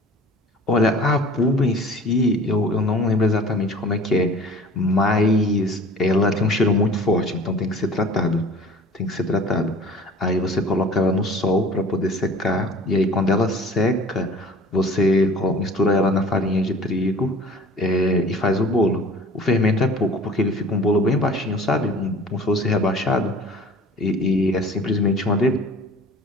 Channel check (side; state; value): both; normal; correlation 0.44